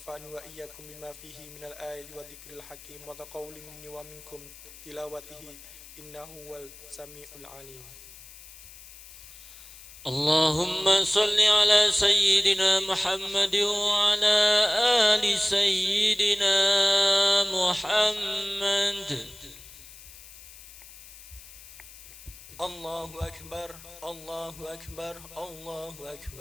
وإياكم بما فيه من الآيات والذكر الحكيم وتقول مني ومنكم تلاوته إنه هو السميع العليم. اللهم صل على سيدنا محمد وعلى آل سيدنا محمد. الله أكبر الله أكبر الله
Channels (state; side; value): noise; left; hiss, 18 dB below the sound